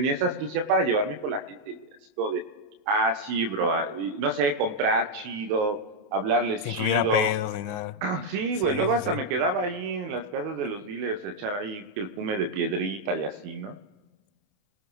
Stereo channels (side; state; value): left; late; 29 ms